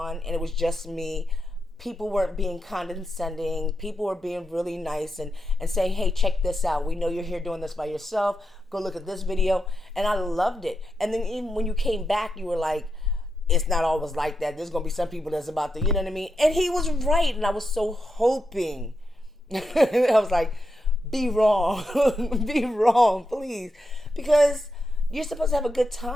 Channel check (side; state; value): both; normal; correlation 0.86